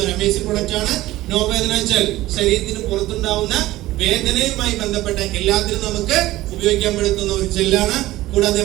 ഒരു അമേസിംഗ് പ്രൊഡക്റ്റ് ആണ്. നോവേദന വെച്ചാൽ ശരീരത്തിന് പുറത്തുണ്ടാവുന്ന വേദനയുമായി ബന്ധപ്പെട്ട എല്ലാത്തിനും നമുക്ക് ഉപയോഗിക്കാൻ പറ്റുന്ന ഒരു ജെല്ലാണ്. കൂടാതെ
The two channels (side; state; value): left; quieter; 16.7 dB